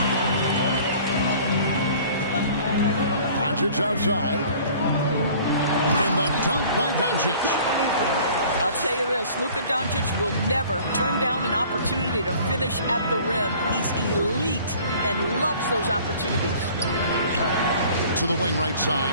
Doncic outside. And the dunk by Doncic. I'll tell you this, Luka Doncic will never turn down an opportunity to finish at the rim. He's elite and loves those opportunities. To the wing right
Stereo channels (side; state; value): both; inverted; correlation -0.50